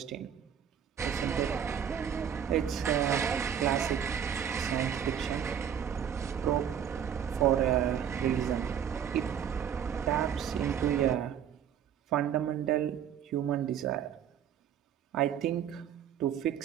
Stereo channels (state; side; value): quieter; left; 8.8 dB